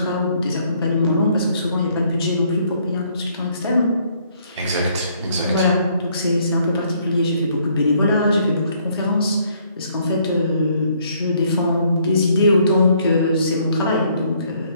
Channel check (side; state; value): both; inverted; correlation -0.66